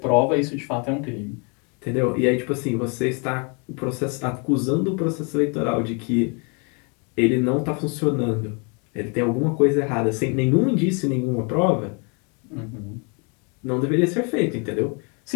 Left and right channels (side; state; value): right; quieter; 34.8 dB